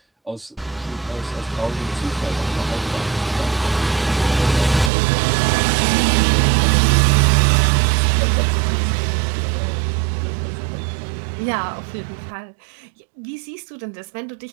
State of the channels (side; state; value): left; drops out; at 4.9 s